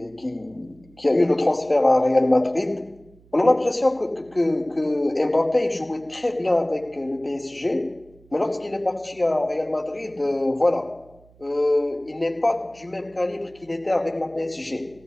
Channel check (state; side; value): noise; right; hum, 28 dB below the sound